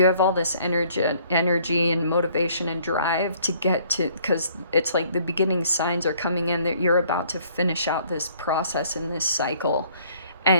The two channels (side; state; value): both; inverted; correlation -0.60